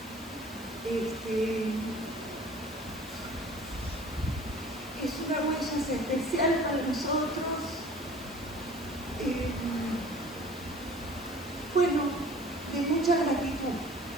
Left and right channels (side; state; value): right; noise; hiss, 20 dB below the sound